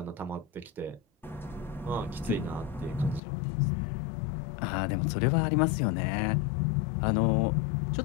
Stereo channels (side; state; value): right; drops out; at 3.2 s